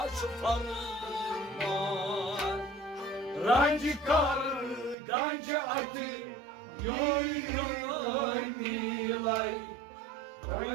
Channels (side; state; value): left; drops out; at 5.0 s